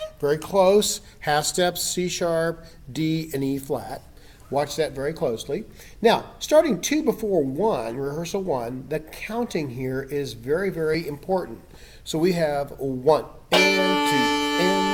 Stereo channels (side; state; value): both; identical; correlation 1.00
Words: Very close, half steps, C sharp, D, and E flat. Watch that very closely. Now, starting 2 before 1, rehearsal 1, the counting here is very, very important. So we have 1 and 2